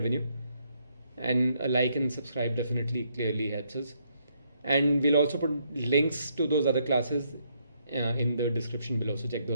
And a like and subscribe definitely clearly helps us. And we'll also put links to those other classes in the description below, so check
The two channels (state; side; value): inverted; both; correlation -0.73